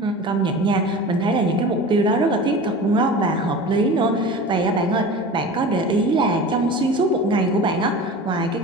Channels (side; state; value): both; normal; correlation 0.35